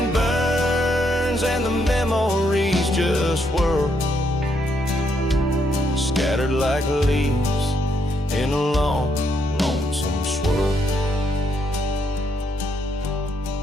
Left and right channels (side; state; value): both; normal; correlation 0.75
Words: burns and the memories just whirl, scattered like leaves in a long, lonesome swirl.